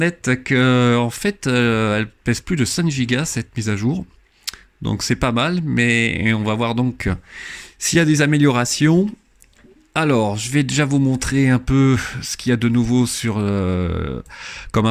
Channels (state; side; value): identical; both; correlation 1.00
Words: que en fait elle pèse plus de 5 Go cette mise à jour, donc c'est pas mal, mais on va voir donc s'il y a des améliorations. Alors, je vais déjà vous montrer un peu ce qu'il y a de nouveau comme